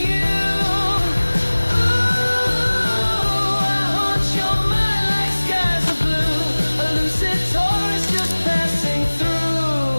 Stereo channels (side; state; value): both; inverted; correlation -1.00